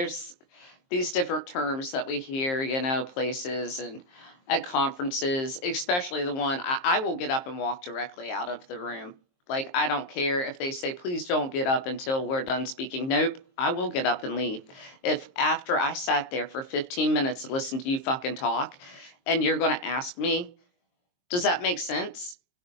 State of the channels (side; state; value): right; late; 23 ms